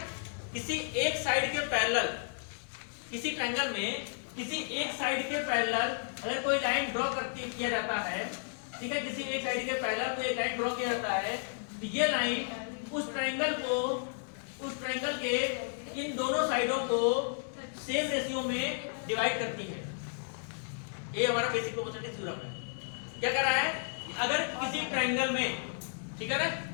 किसी एक साइड के पैरेलल, किसी ट्रायंगल में किसी एक साइड के पैरेलल अगर कोई लाइन ड्रॉ किया जाता है, ठीक है, किसी एक साइड के पैरेलल कोई एक लाइन ड्रॉ किया जाता है, तो ये लाइन उस ट्रायंगल के इन दोनों साइडों को सेम रेशियो में डिवाइड करती है। ये हमारा बेसिक प्रोपोर्शनैलिटी थ्योरम है। क्या कह रहा है, अगर किसी ट्रायंगल में, ठीक है ना,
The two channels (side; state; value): right; silent; digital silence